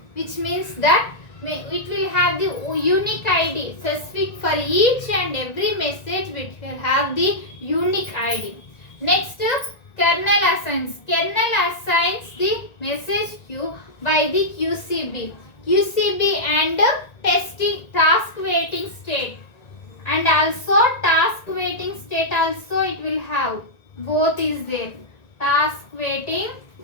which means that it will have the unique ID specific for each and every message, which will have the unique ID. Next, kernel assigns. Kernel assigns the message queue by the QCB. QCB and task waiting state. And also task waiting state also it will have. Both is there. Task waiting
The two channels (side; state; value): right; late; 1.9 ms